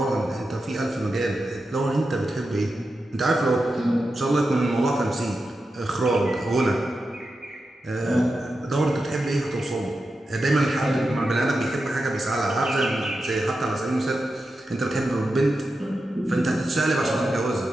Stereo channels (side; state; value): both; normal; correlation 0.90